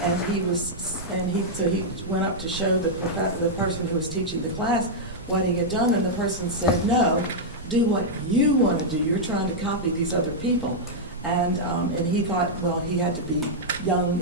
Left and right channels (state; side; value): normal; both; correlation -0.06